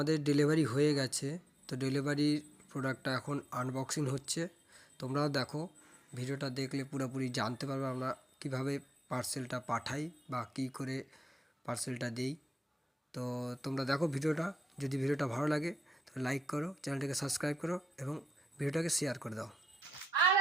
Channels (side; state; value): both; normal; correlation 0.87